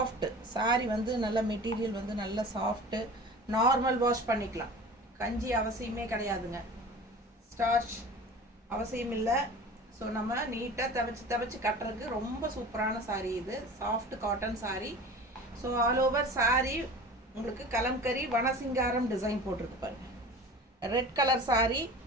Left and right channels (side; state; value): both; normal; correlation 0.38